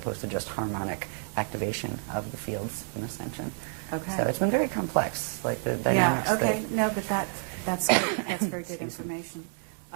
to just harmonic activation of the fields in Ascension. Okay. So it's been very complex, like the dynamics. Yeah, okay. No, but that's good. That's very good information.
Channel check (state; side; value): silent; left; 58 dB below the other